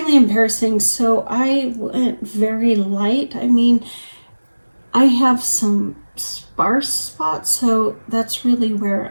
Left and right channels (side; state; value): both; inverted; correlation -1.00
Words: embarrassing. So I went very light. I mean, I have some sparse spots, so that's really where